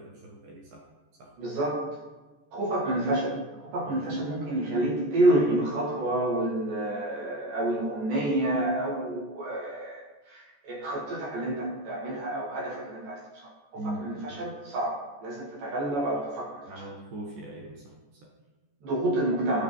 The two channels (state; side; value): late; left; 14 ms